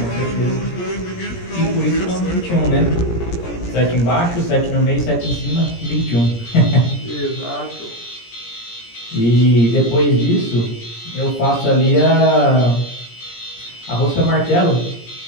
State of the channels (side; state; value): right; late; 17 ms